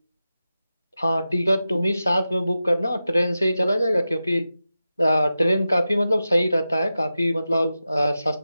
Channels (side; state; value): both; inverted; correlation -0.92